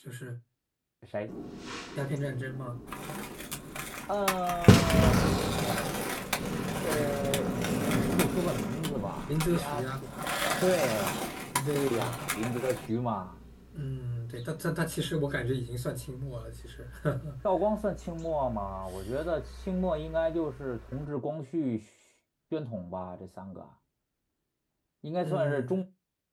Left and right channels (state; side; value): identical; both; correlation 1.00